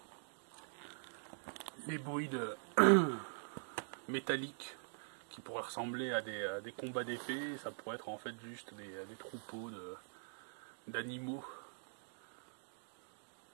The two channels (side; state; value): left; silent; digital silence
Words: les bruits métalliques qui pourraient ressembler à des combats d'épée. Ça pourrait être en fait juste des troupeaux d'animaux